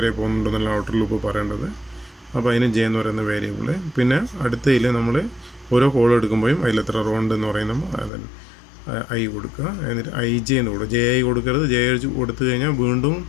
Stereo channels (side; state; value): right; drops out; at 8.1 s